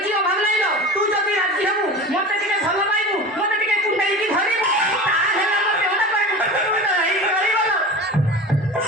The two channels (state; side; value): normal; both; correlation 0.33